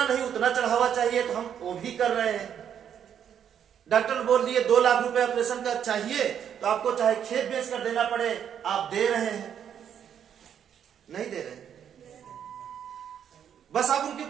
नहीं उतना चढ़ावा चाहिए तो हम वो भी कर रहे हैं। डॉक्टर बोल दिए 2 लाख रुपए ऑपरेशन का चाहिए तो आपको चाहे खेत बेच कर देना पड़े, आप दे रहे हैं? नहीं दे रहे, बस आप उनके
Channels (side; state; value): left; quieter; 8.8 dB